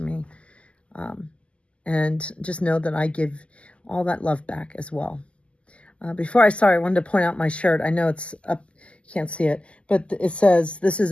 me. And just know that I give all that love back as well. Before I start, I wanted to point out my shirt. I know it's up, you can't see it, but it says, this is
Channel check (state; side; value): late; right; 0.056 ms